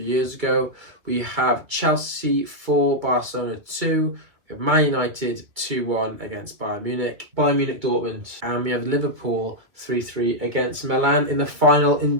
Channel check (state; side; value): late; left; 2.3 ms